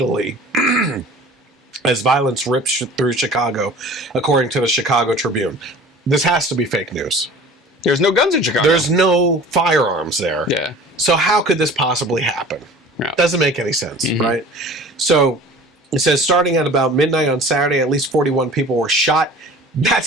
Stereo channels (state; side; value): normal; both; correlation 0.43